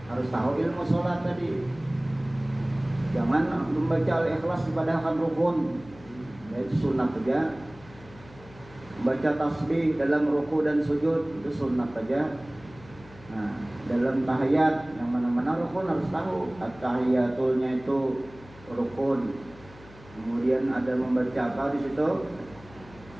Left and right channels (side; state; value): left; noise; hum, 21 dB below the sound